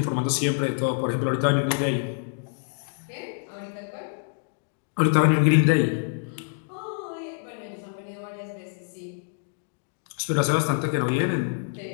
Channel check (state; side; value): silent; right; digital silence